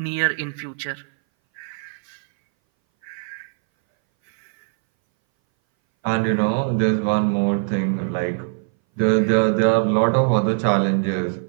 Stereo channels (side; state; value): left; silent; 61 dB below the other